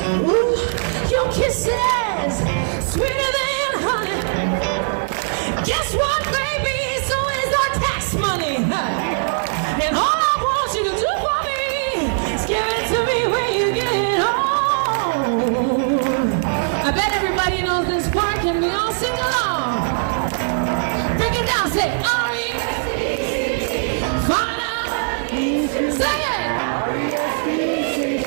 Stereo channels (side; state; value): left; silent; digital silence